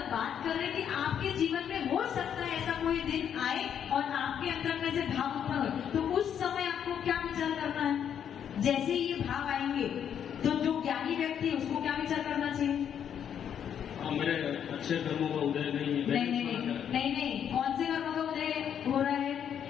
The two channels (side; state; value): right; quieter; 8.8 dB